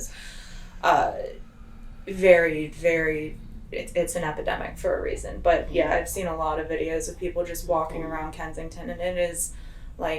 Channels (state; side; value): identical; both; correlation 1.00